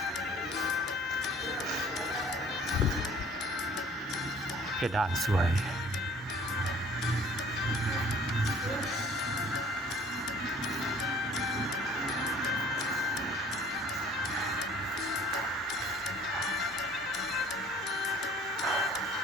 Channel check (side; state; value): both; normal; correlation 0.52